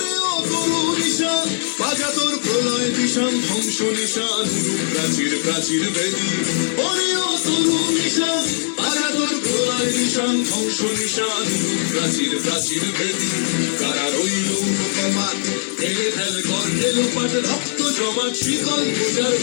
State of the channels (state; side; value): silent; right; digital silence